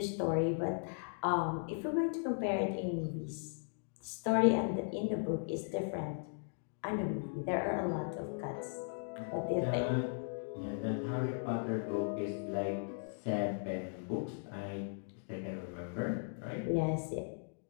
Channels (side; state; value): right; silent; digital silence